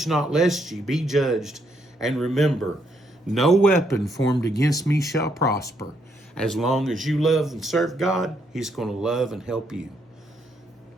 not lest ye be judged. And remember, no weapon formed against me shall prosper. As long as you love and serve God, he's going to love and help you.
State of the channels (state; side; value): normal; both; correlation 0.74